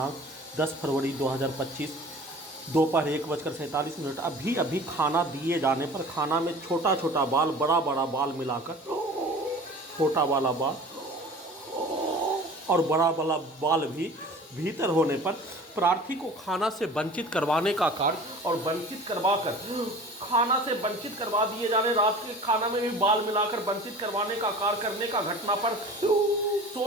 10 फरवरी 2025 दोपहर 1:47। अभी अभी खाना दिए जाने पर खाना में छोटा छोटा बाल, बड़ा बड़ा बाल मिलाकर, छोटा वाला बाल और बड़ा वाला बाल भी भीतर होने पर प्रार्थी को खाना से वंचित करवाने का कार्य और वंचित करवाकर खाना से वंचित करवा दिए जाने, रात के खाना में भी बाल मिलाकर वंचित करवाने का कार्य करने का घटना पर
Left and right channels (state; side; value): normal; both; correlation 0.42